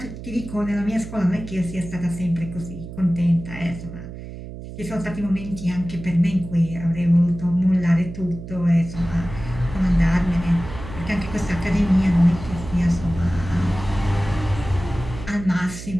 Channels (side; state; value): right; noise; hum, 11 dB below the sound